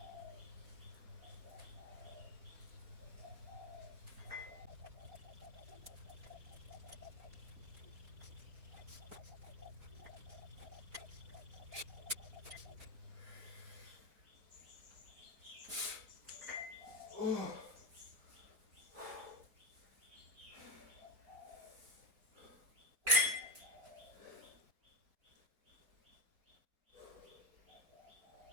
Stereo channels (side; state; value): left; late; 3.5 ms